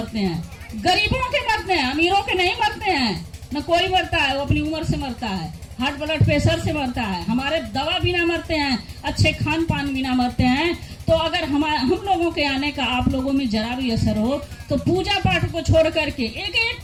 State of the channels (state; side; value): identical; both; correlation 1.00